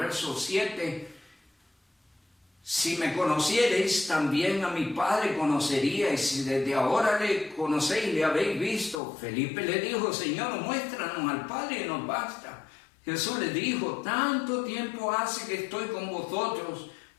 7, si me conociereis, también a mi Padre conoceríais, si desde ahora le conocéis, le habéis visto. Felipe le dijo, Señor, muéstranos al Padre y nos basta. Jesús le dijo, tanto tiempo hace que estoy con vosotros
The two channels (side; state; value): right; drops out; at 9.0 s